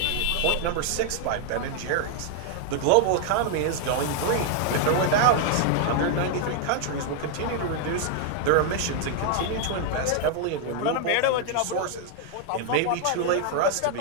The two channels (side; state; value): both; different; correlation 0.00